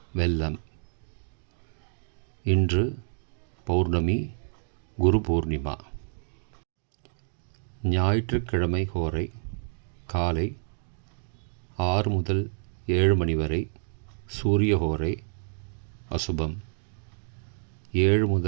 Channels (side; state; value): left; silent; digital silence